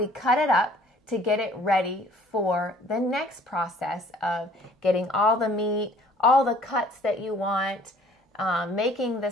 cut it up to get it ready for the next process of getting all the meat, all the cuts that you want, making the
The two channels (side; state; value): both; normal; correlation 0.55